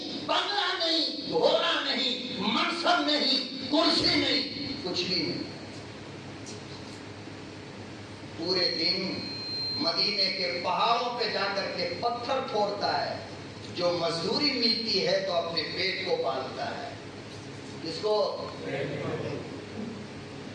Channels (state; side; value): identical; both; correlation 1.00